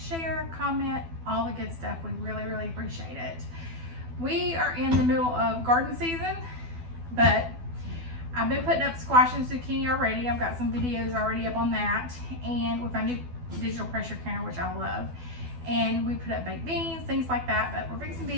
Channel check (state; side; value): late; left; 12 ms